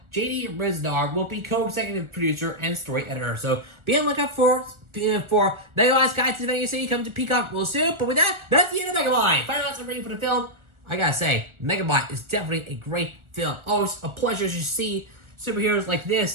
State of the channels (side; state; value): left; late; 1.4 ms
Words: J.D. Riznar will be co-executive producer and story editor. So be on the lookout for Megamind's Guide to Defending Your City coming to Peacock real soon. But with that, that's the end of Megamind. Final thoughts and rating for the film. I gotta say, Megamind is definitely a great film. Always a pleasure to see superheroes like